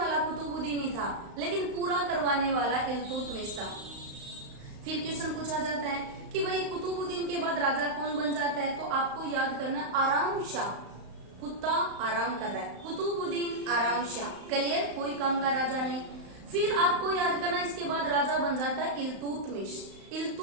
कुतुबुद्दीन ही था, लेकिन पूरा करवाने वाला इल्तुतमिश था। फिर क्वेश्चन पूछा जाता है कि भाई कुतुबुद्दीन के बाद राजा कौन बन जाता है, तो आपको याद करना आराम शाह। कुत्ता आराम कर रहा है, कुतुबुद्दीन आराम शाह। क्लियर, कोई काम का राजा नहीं। फिर आपको याद करना इसके बाद राजा बन जाता है इल्तुतमिश।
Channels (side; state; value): left; late; 35 ms